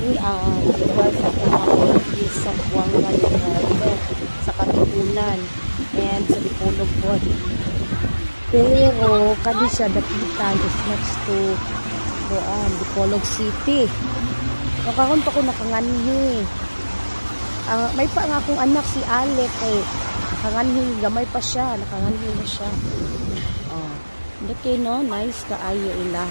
lugar sa Pumapon is sa Buanga del Norte, sa Katipunan and sa Dipolog po. Pero kani siya dapitan is next to Dipolog City. So karon pa ko nakanganhi. May pa nga akong anak si Alec nakanganhi, gamay pa siya, nakanganhi na siya. Okay, no? Nice kaayo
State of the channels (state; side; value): inverted; both; correlation -1.00